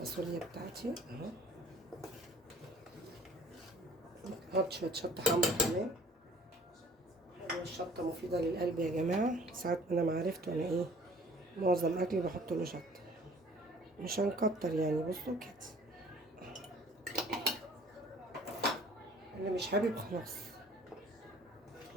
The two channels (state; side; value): normal; both; correlation 0.52